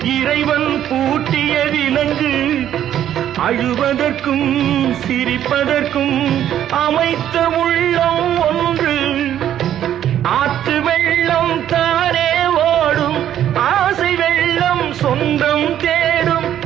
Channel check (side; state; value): left; quieter; 10.9 dB